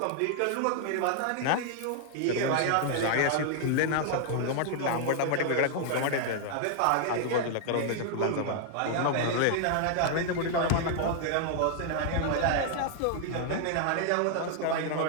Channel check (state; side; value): different; both; correlation 0.00